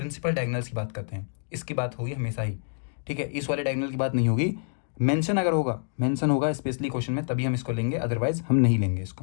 डायगोनल्स की बात करते हैं। इसकी बात होगी हमेशा ही, ठीक है, इस वाले डायगोनल की बात नहीं होगी। मेंशन अगर होगा, मेंशन होगा स्पेशली क्वेश्चन में, तभी हम इसको लेंगे, अदरवाइज हम नहीं लेंगे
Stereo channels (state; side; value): silent; right; 60 dB below the other